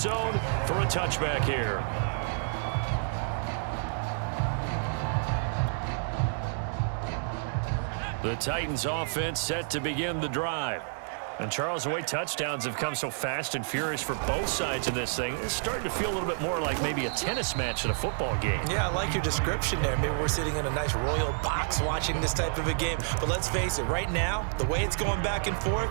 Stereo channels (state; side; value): silent; left; digital silence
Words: for a touchback here. The Titans offense set to begin the drive. And Charles, the way touchdowns have come so fast and furious for both sides of this thing, it's starting to feel a little bit more like maybe a tennis match at a football game. Yeah, I like your description there. Maybe we're sitting in a nice royal box watching this type of a game. But let's face it, right now, the way it's going back and forth,